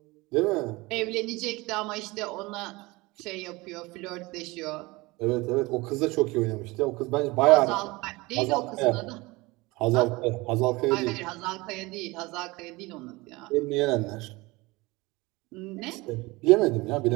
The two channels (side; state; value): left; quieter; 22.7 dB